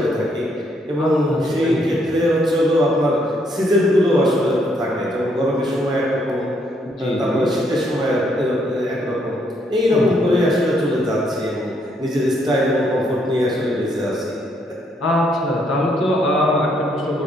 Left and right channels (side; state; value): both; normal; correlation 0.72